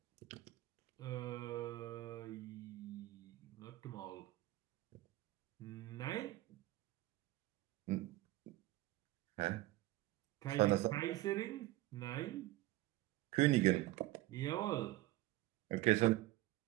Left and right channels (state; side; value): quieter; left; 17.4 dB